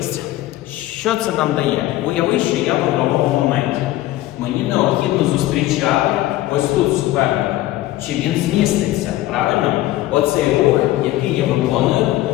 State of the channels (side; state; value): right; quieter; 15.7 dB